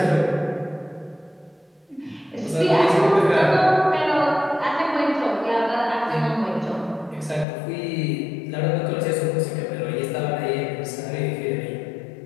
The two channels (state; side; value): drops out; right; at 7.5 s